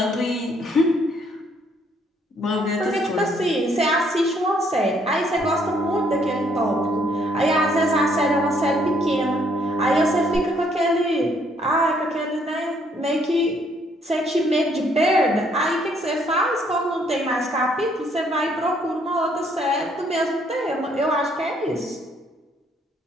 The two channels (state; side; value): normal; both; correlation 0.67